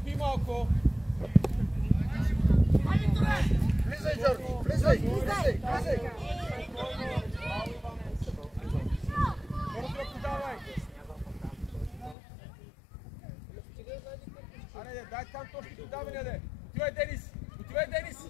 Влизай! Аре, дай там точки подаване, де! Отивай, Денис!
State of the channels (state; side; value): drops out; right; at 12.2 s